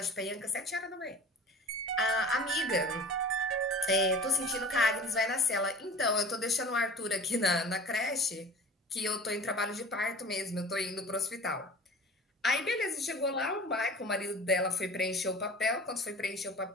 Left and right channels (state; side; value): normal; both; correlation 0.41